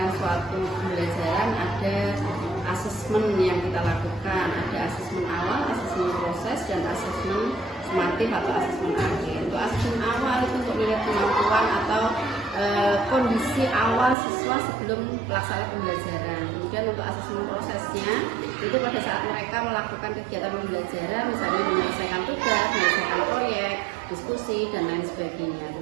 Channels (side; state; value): left; drops out; at 14.2 s